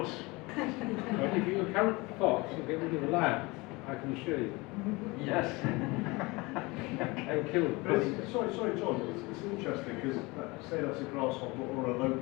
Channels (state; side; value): quieter; right; 24.3 dB